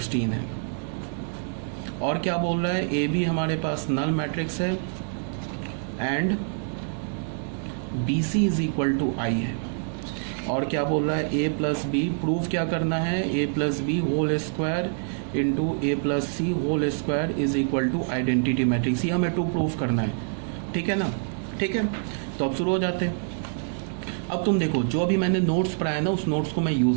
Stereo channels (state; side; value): silent; left; 61 dB below the other